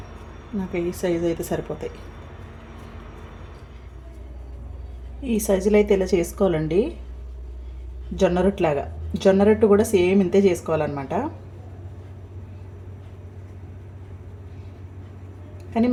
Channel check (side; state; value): both; identical; correlation 1.00